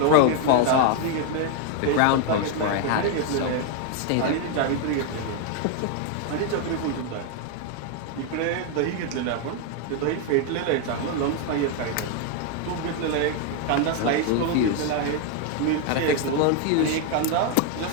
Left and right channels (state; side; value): different; both; correlation 0.00